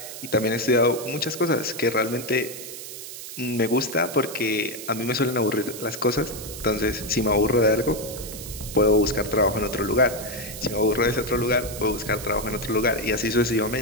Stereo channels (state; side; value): noise; right; hiss, 11 dB below the sound